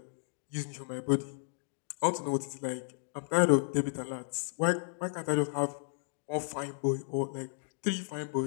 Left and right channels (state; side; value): silent; right; digital silence